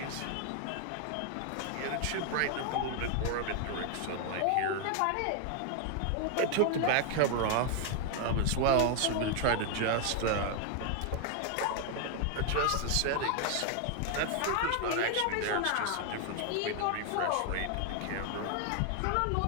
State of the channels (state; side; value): different; both; correlation 0.00